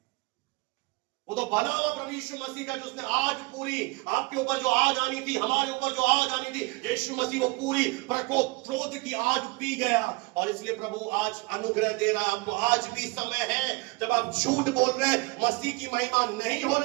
वो तो भला हुआ प्रभु यीशु मसीह का, जिसने आग पूरी आपके ऊपर जो आग आनी थी, हमारे ऊपर जो आग आनी थी, यीशु मसीह वो पूरी प्रकोप क्रोध की आग पी गया। और इसलिए प्रभु आज अनुग्रह दे रहा है आपको। आज भी समय है जब आप झूठ बोल रहे हैं, मसीह की महिमा नहीं हो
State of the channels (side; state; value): left; quieter; 25.8 dB